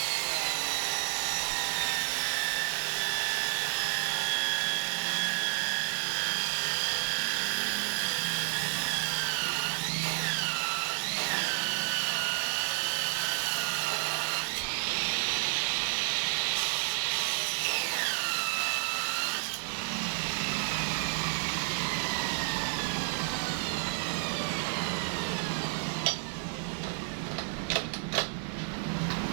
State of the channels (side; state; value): left; silent; 57 dB below the other